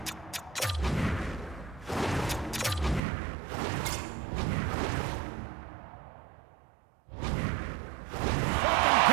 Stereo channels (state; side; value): drops out; left; at 3.0 s